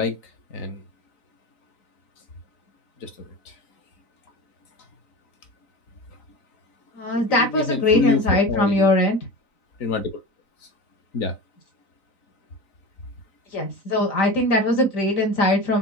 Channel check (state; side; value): late; right; 3.9 ms